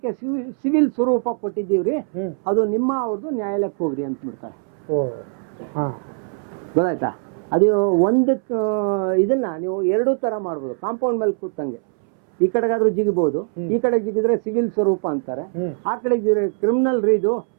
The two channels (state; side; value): silent; left; 65 dB below the other